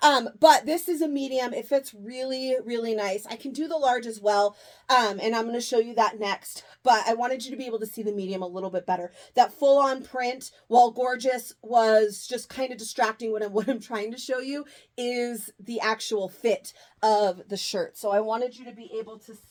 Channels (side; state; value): both; identical; correlation 1.00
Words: But this is a medium. It fits really, really nice. I can do the large as well. And I'm going to show you that next. But I wanted you to be able to see the medium a little bit better. That full-on print, while gorgeous, was just kind of distracting. What I'm trying to show you is the actual fit of the shirt. So I wanted you to be able to